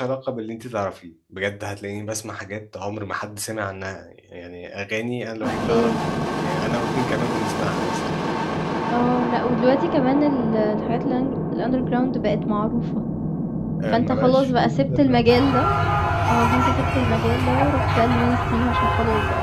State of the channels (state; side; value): identical; both; correlation 1.00